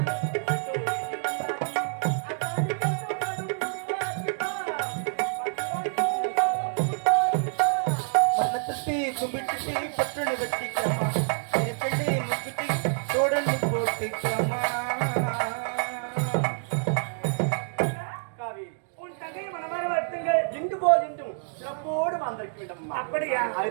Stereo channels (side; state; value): left; silent; digital silence